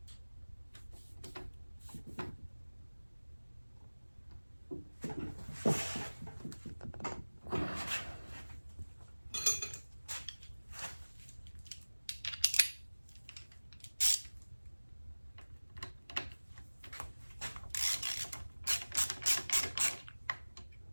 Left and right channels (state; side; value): inverted; both; correlation -1.00